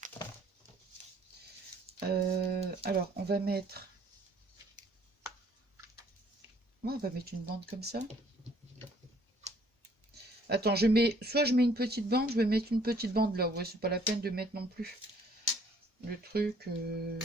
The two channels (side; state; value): both; normal; correlation 0.61